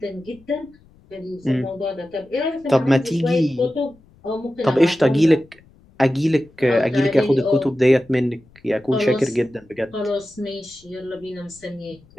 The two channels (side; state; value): left; noise; rumble, 28 dB below the sound